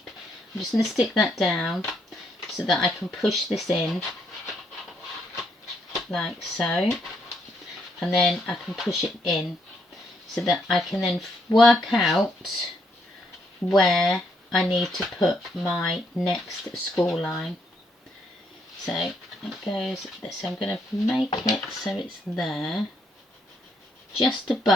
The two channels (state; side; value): normal; both; correlation 0.74